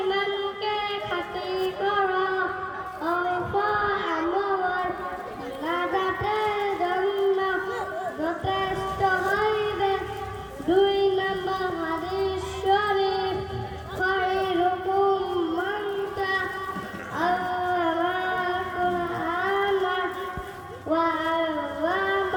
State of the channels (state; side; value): identical; both; correlation 1.00